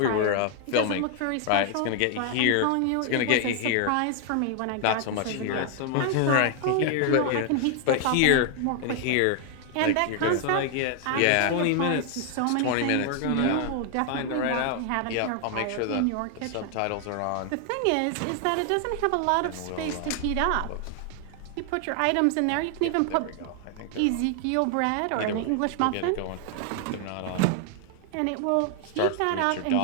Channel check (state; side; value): different; both; correlation 0.00